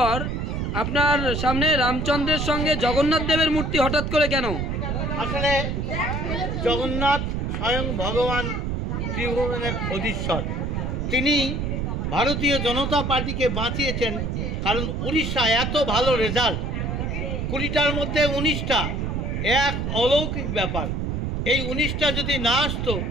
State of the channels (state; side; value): noise; right; rumble, 1 dB below the sound